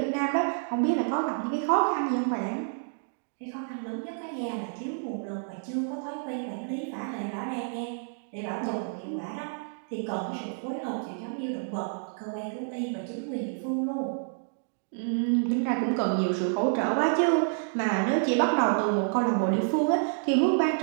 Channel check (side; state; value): left; silent; digital silence